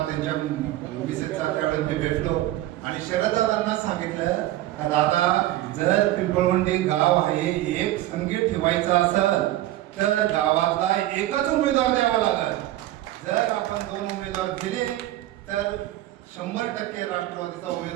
त्यांच्या मिसेसचा. त्यावेळी मी भेटलो आणि शरददादांना सांगितलं का दादा, जर पिंपळवंडी गाव आहे एक संगीत ठेवायचा असेल तर गावातला एकच उमेदवार द्यावा लागेल. जर आपण 2 उमेदवार दिले तर 100% राष्ट्रवादीचा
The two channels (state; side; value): quieter; left; 15.1 dB